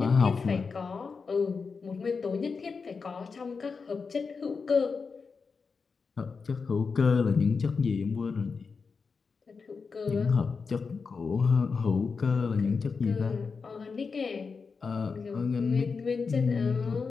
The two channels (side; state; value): right; quieter; 5.0 dB